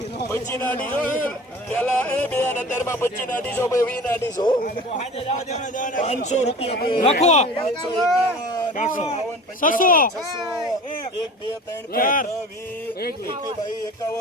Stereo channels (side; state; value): both; normal; correlation 0.39